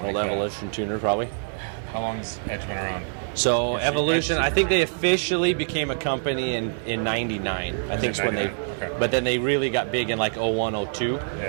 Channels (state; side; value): silent; left; 62 dB below the other